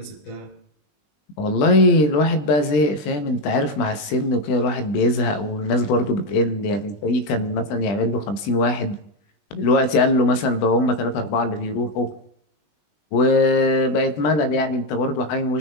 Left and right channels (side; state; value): right; late; 20 ms